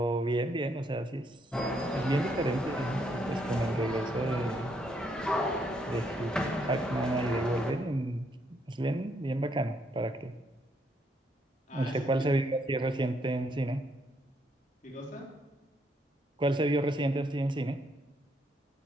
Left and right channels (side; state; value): both; normal; correlation 0.73